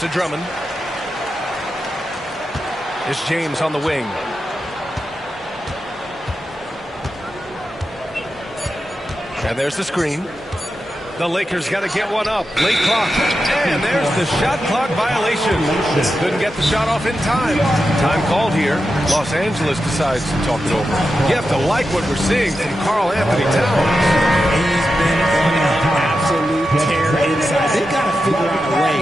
to Drummond. It's James on the wing. And there's the screen. The Lakers got to get one up. Late clock. And there's the shot clock violation. Couldn't get the shot off in time. Time called here. Los Angeles decides to talk it over. You have to like what we're seeing from Karl Anthony Towns. He's been on an absolute tear inside. They've got to figure out a way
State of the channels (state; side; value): normal; both; correlation 0.90